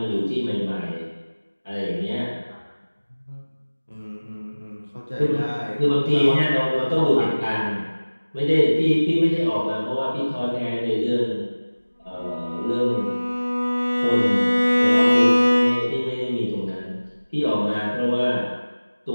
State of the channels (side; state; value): both; inverted; correlation -1.00